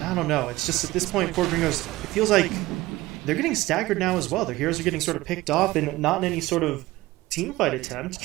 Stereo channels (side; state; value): left; quieter; 18.4 dB